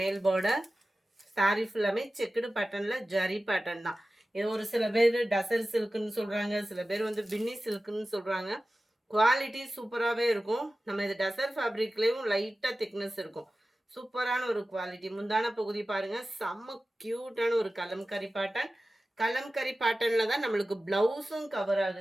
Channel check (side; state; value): both; normal; correlation 0.95